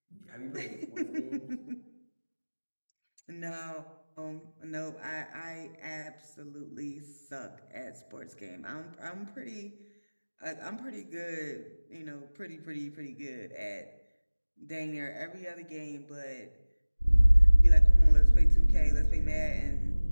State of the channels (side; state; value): both; inverted; correlation -1.00